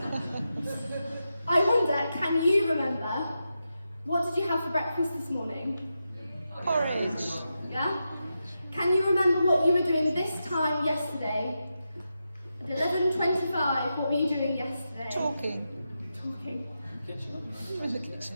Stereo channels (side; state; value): both; inverted; correlation -0.88